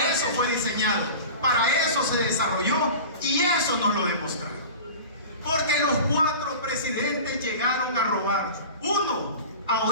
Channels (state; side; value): inverted; both; correlation -0.35